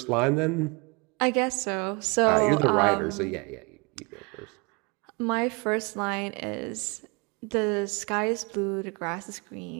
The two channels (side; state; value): left; quieter; 30.1 dB